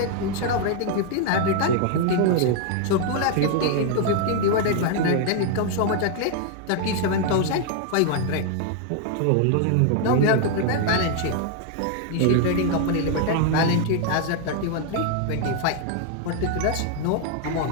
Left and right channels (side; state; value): both; different; correlation 0.00